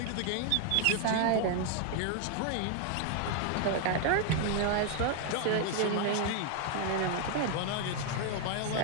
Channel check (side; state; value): both; different; correlation 0.00